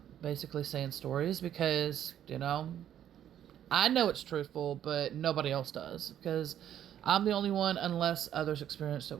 basically saying stories, because, I know it's truthful, but nobody else does, because I'm the only one, unless others experienced it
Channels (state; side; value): quieter; left; 10.5 dB